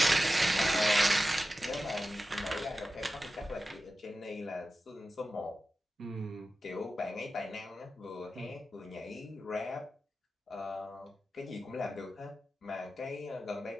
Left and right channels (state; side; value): normal; both; correlation 0.93